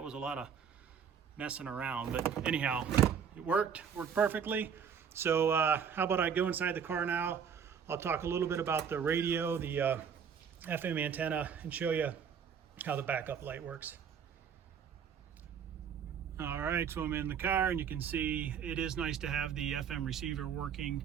was a lot of messing around, but anyhow, it worked perfectly. So how about I go inside the car now? I'll talk a little bit about the radio, the FM antenna, and show you how the backup light works. All right, so I'm in the car and you can see it is nice to have the FM receiver working.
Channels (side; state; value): left; quieter; 7.4 dB